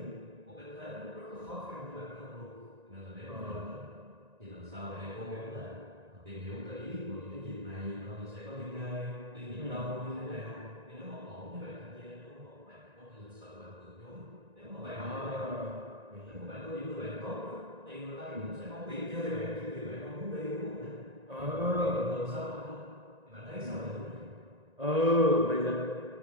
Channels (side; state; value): left; late; 1.9 ms